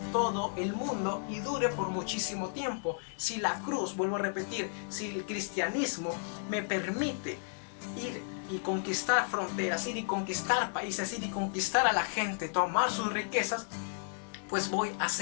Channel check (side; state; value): right; silent; digital silence